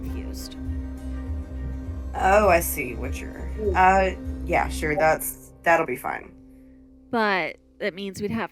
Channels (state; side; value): identical; both; correlation 1.00